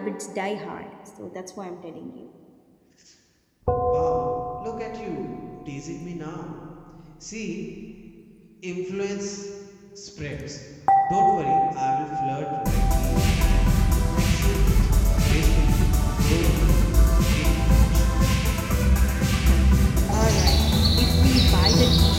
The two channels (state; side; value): identical; both; correlation 1.00